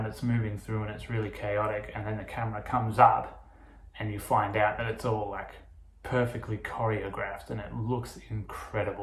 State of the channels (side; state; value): both; identical; correlation 1.00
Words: it's moving through and it's really chaotic, and then the camera comes up and you find out that it's all like perfectly choreographed and it looks